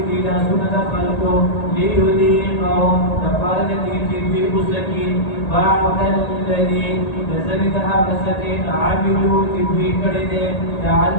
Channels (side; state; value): right; late; 1.8 ms